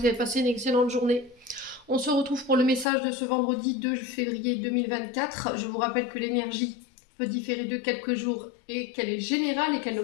avez passé une excellente journée. On se retrouve pour le message de ce vendredi 2 février 2024. Je vous rappelle que l'énergie peut différer de quelques jours et qu'elle est générale et qu'elle ne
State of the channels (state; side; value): drops out; right; at 2.9 s